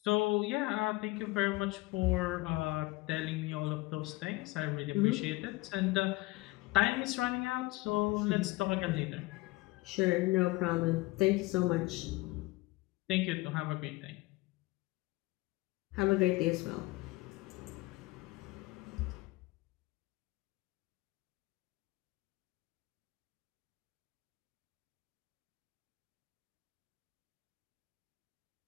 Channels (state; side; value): quieter; right; 21.4 dB